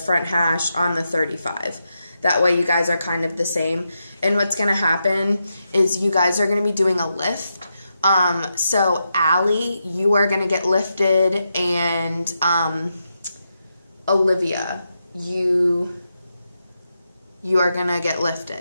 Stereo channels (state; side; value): inverted; both; correlation -0.85